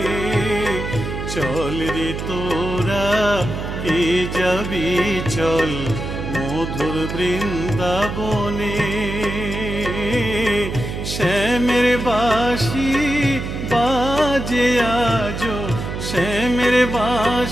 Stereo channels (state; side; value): noise; right; hum, 5 dB below the sound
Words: চল রে তোরা কে যাবি চল মধুর বৃন্দাবনে। শ্যামের বাঁশি বাজে আজো, শ্যামের